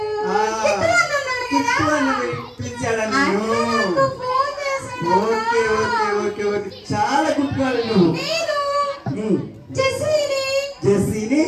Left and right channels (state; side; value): identical; both; correlation 1.00